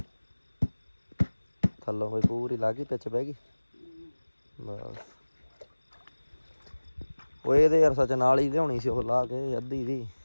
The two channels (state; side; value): inverted; both; correlation -1.00